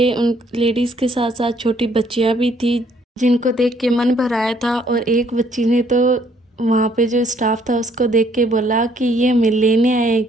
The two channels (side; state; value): both; normal; correlation 0.65